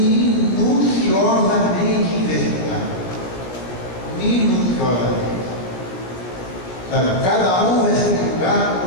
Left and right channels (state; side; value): late; right; 16 ms